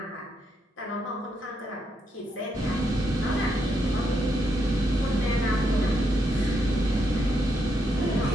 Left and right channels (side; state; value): both; normal; correlation 0.79